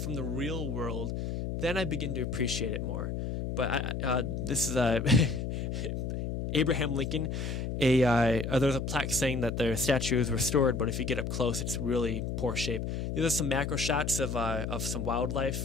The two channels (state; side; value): noise; left; hum, 3 dB below the sound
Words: the real world, then I begin to appreciate it more. But this is Abraham Lincoln. There's a plaque saying that their statue is restored, but if you get up close, it's really poor shape. There's some macro shots of some